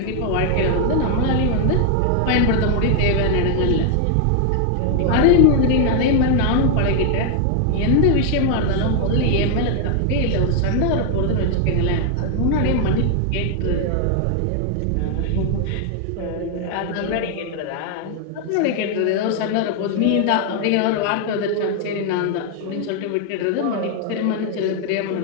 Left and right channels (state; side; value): different; both; correlation 0.00